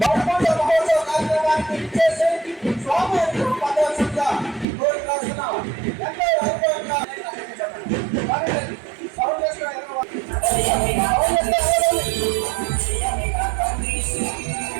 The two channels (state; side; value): drops out; left; at 4.7 s